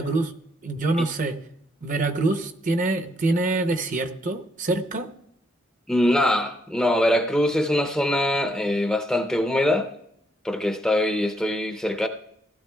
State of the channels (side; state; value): both; normal; correlation 0.74